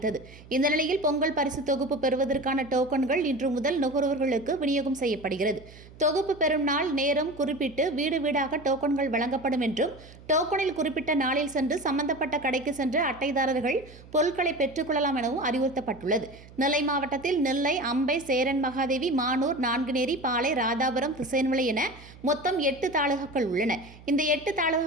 இந்த நிலையில் பொங்கல் பரிசு தொகுப்பு பெறுவதற்கான டோக்கன்கள் இன்று முதல் நுகர்வோர்களுக்கு விநியோகம் செய்யப்படுகிறது. தொகுப்பு பெறும் நாள் நேரம் குறிப்பிட்டு வீடு வீடாக டோக்கன்கள் வழங்கப்படும் என்றும், டோக்கனில் குறிப்பிட்ட நாளில் சென்று சம்பந்தப்பட்ட கடைக்கு சென்று அட்டைதாரர்கள் பொருட்களை பெற்றுக் கொள்ளலாம் எனவும் அறிவுறுத்தப்பட்டுள்ளது. நெல்லை மாவட்டத்தில் நெல்லை, அம்பை, சேரன் மகாதேவி, மானூர், நான்குநேரி, பாளை, ராதாபுரம், திசையன்மலை என மொத்தம் 8 தாலுகாக்கள் உள்ளன. இந்த 8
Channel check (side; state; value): right; noise; hum, 20 dB below the sound